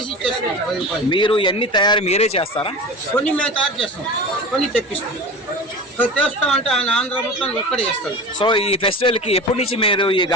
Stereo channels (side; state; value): both; normal; correlation 0.33